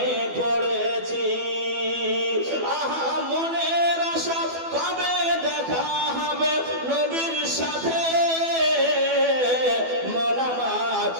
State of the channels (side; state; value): left; late; 12 ms